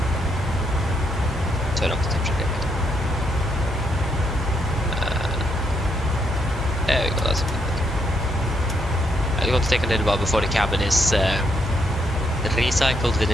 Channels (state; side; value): normal; both; correlation 0.76